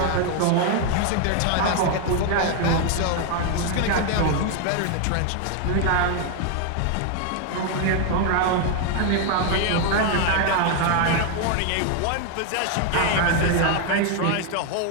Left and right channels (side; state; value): both; different; correlation 0.01